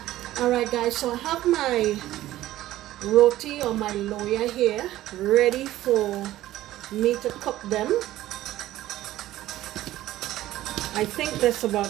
Alright guys, so I have my roti or my loya here ready for me to cook them. I think there's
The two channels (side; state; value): left; quieter; 14.8 dB